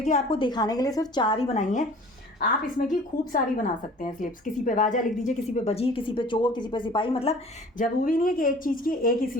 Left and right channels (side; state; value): both; normal; correlation 0.47